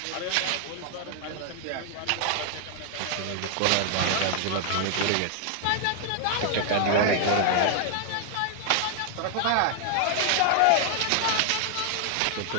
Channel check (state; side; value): different; both; correlation 0.00